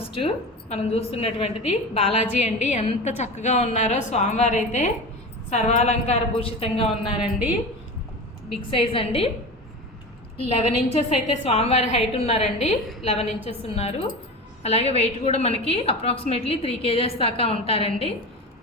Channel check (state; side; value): normal; both; correlation 0.29